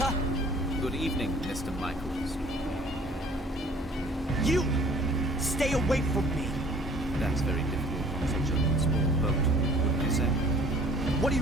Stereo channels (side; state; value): both; normal; correlation 0.52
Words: Good evening, Mr. Michaels. You! Stay away from me! That's very difficult on such a small boat, wouldn't you say? What do